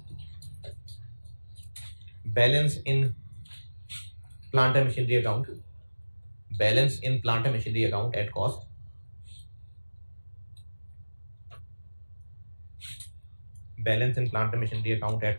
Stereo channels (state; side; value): inverted; both; correlation -1.00